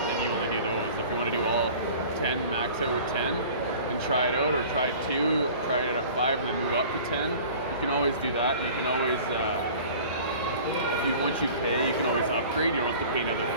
you only do those. If you want to do all 10, max out with 10, and try it out, or try 2, try it at 5, and then move up to 10. You can always do that, and you can always, once you pay, you can always upgrade. You don't have to pay another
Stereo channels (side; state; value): both; inverted; correlation -0.44